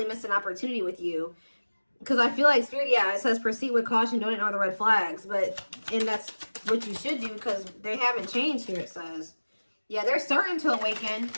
missed an opportunity with you. Because I feel like Spirit, yeah, it says proceed with caution, don't ignore the red flags. And that's what you should do, because they haven't changed here, it says. Yeah, they're starting to awaken.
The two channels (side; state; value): both; inverted; correlation -1.00